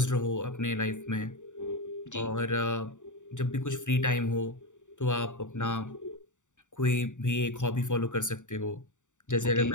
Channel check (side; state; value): right; late; 0.86 ms